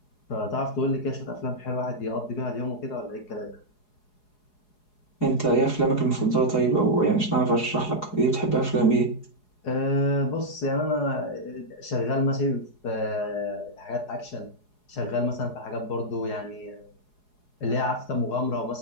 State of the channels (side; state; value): right; late; 4.8 ms